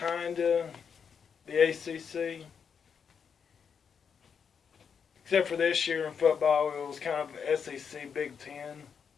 of the ACC. Except for this year in football, it was kind of SEC Big Ten.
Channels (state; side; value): quieter; right; 6.7 dB